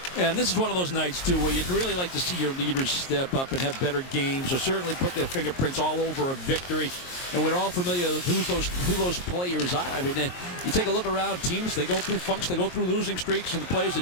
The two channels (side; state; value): right; late; 22 ms